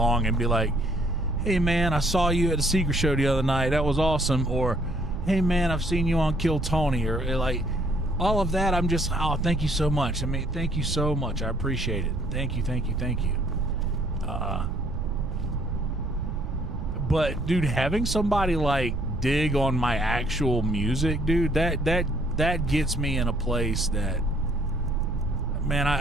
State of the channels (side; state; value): right; noise; rumble, 6 dB below the sound